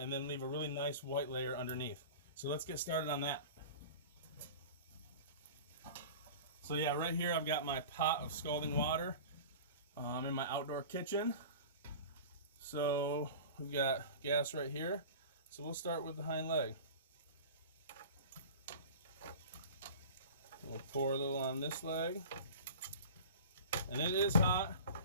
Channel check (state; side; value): inverted; both; correlation -0.37